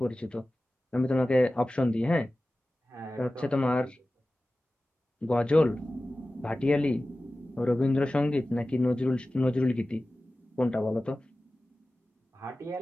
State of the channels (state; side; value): normal; both; correlation 0.96